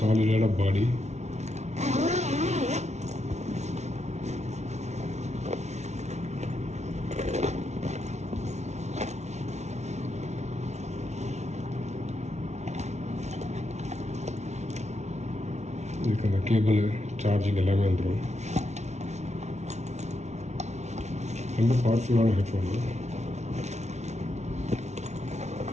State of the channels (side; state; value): left; late; 0.32 ms